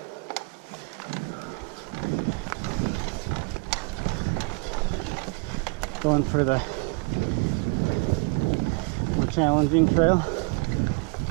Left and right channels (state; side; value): quieter; left; 32.8 dB